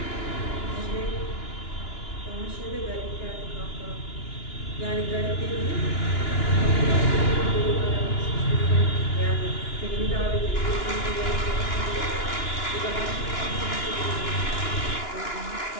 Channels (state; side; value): late; right; 2.9 ms